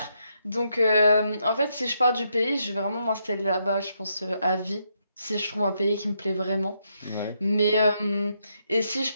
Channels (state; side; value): inverted; both; correlation -0.78